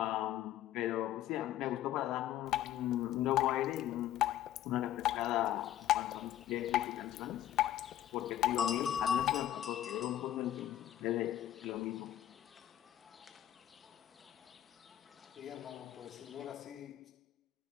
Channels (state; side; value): quieter; right; 12.1 dB